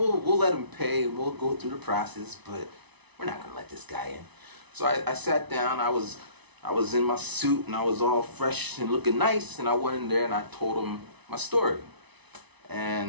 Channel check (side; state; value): left; late; 1.0 ms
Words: let them pay and we'll go through the process, but we're not going to let this guy in. So I sat down. I was in my suit and I was all fresh and looking nice, and I went in there and I told him my story.